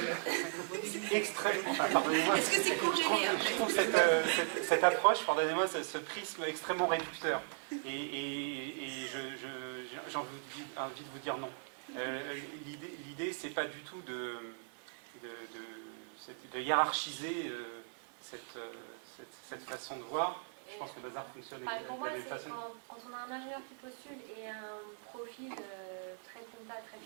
Extrêmement. Pardonnez-moi. Est-ce que c'est congélé? Je trouve cette approche, pardonnez-moi, ce prisme extrêmement réducteur. Et j'ai envie de vous dire non. L'idée, c'est pas du tout de hiérarchiser cette façon de voir. Je pense que le bazar fonctionne de la même façon. Quand on a un ingénieur qui postule et un profil très compta, très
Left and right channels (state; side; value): silent; left; digital silence